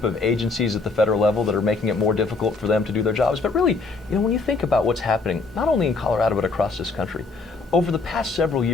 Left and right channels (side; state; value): right; quieter; 4.0 dB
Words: of agencies at the federal level that are making it more difficult for them to do their jobs. But really, when you think about what's happening, not only in Colorado but across this country, over the past several